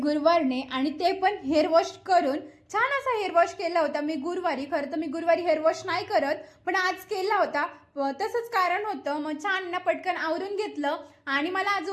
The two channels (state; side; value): identical; both; correlation 1.00